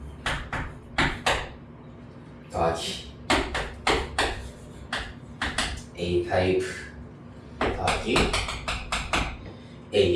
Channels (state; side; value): identical; both; correlation 1.00